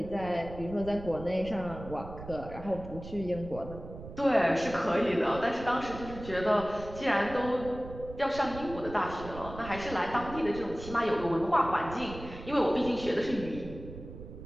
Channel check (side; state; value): right; noise; rumble, 12 dB below the sound